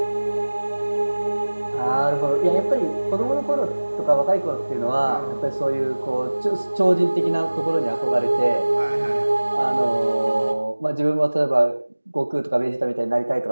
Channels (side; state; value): both; inverted; correlation -1.00